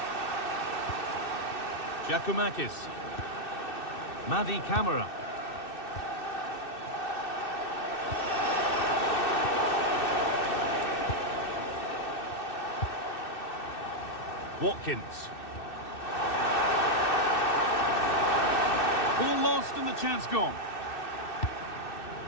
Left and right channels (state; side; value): late; right; 2.6 ms